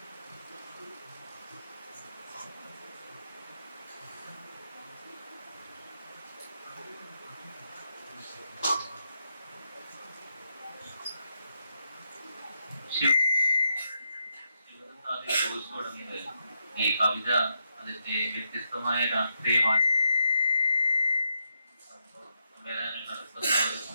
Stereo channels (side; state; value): both; inverted; correlation -0.81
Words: ഈ കവിത അതിന്റെ വ്യത്യസ്തമായ രാഷ്ട്രീയ നടത്തുന്ന ഒരു